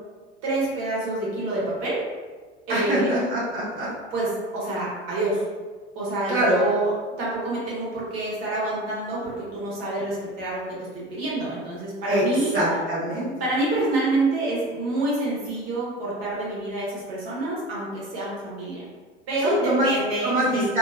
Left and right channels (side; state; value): both; normal; correlation 0.32